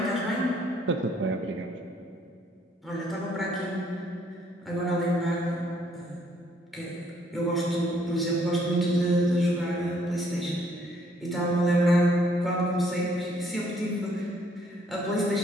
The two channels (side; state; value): both; normal; correlation 0.66